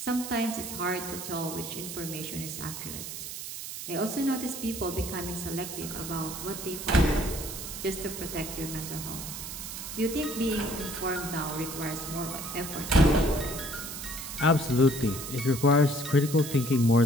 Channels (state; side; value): noise; right; hiss, 8 dB below the sound